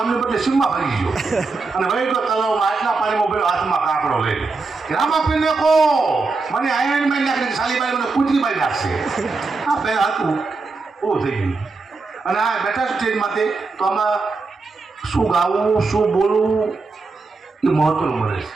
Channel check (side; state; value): left; quieter; 4.0 dB